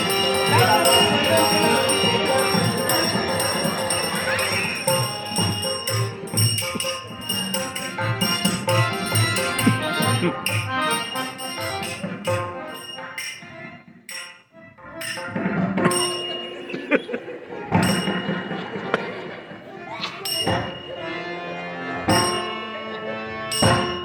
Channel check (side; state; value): both; identical; correlation 1.00